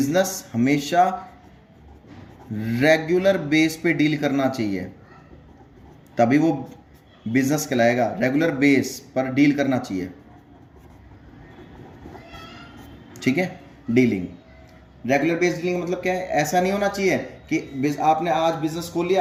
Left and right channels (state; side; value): identical; both; correlation 1.00